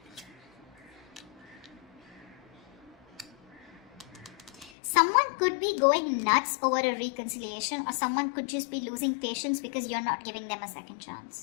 Someone could be going nuts over a reconciliation, or someone could just be losing patience because you're not giving them a second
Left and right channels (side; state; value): right; drops out; at 4.7 s